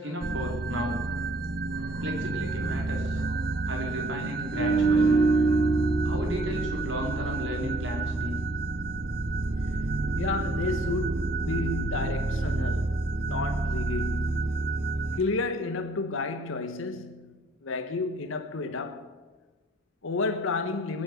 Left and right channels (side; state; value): both; normal; correlation 0.59